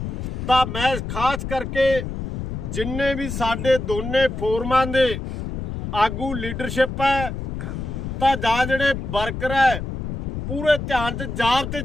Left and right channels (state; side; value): noise; left; rumble, 5 dB below the sound